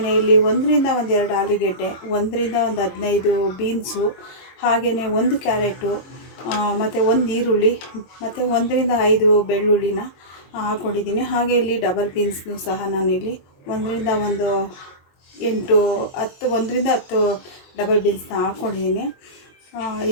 ಇಲ್ಲಿ 1ರಿಂದ 2 ಆಲೂಗೆಡ್ಡೆ, 1ರಿಂದ 15 ಬೀನ್ಸು, ಹಾಗೆಯೇ 1 ಕ್ಯಾರೆಟು, ಮತ್ತು 1 ಈರುಳ್ಳಿ, ಮತ್ತು 1ರಿಂದ 5 ಬೆಳ್ಳುಳ್ಳಿನ ಹಾಕ್ಕೊಂಡಿದ್ದೀನಿ. ಹಾಗೆ ಇಲ್ಲಿ ಡಬಲ್ ಬೀನ್ಸ್ನು ಸಹ ನಾನಿಲ್ಲಿ 1ರಿಂದ 10 ಡಬಲ್ ಬೀನ್ಸ್ನ ಹಾಕ್ಕೊಂಡಿದ್ದೀನಿ.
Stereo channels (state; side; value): late; right; 22 ms